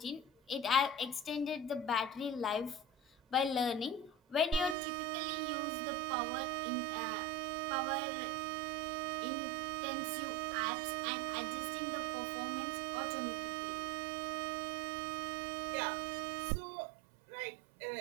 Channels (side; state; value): left; drops out; at 4.8 s